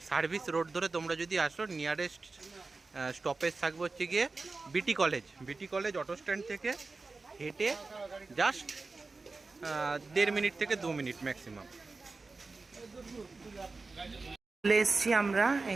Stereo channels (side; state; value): left; quieter; 3.8 dB